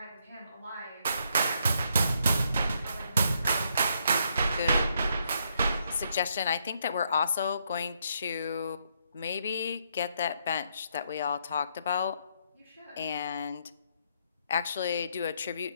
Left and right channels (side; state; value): both; inverted; correlation -0.75